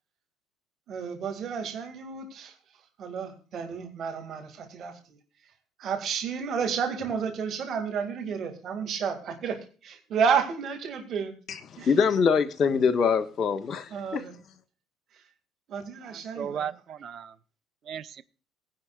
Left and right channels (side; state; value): both; normal; correlation 0.64